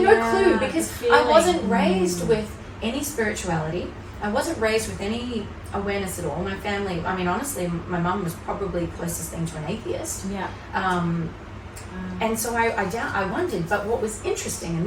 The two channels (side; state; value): both; identical; correlation 1.00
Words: no clue because I wasn't raised with any spirituality. I wasn't raised with any awareness at all. My family, I mean, honestly, my mum was probably the closest thing to an atheist. And so I wondered, but what was interesting,